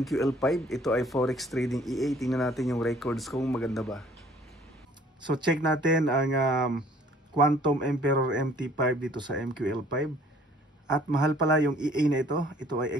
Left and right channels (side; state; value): both; normal; correlation 0.56